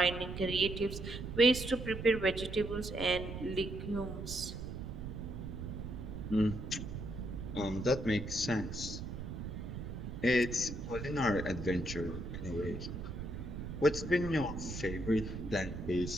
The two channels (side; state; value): right; noise; rumble, 7 dB below the sound